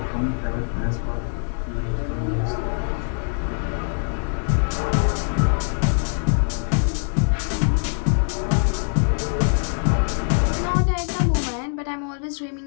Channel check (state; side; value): silent; right; 63 dB below the other